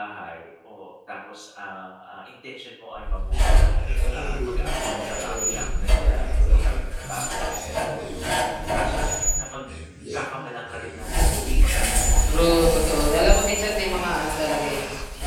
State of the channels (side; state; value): both; identical; correlation 1.00